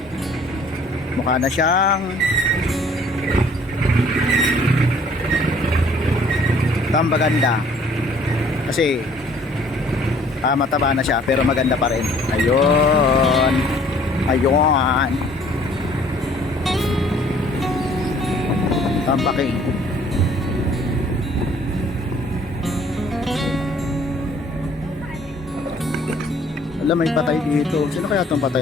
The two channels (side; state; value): both; normal; correlation 0.57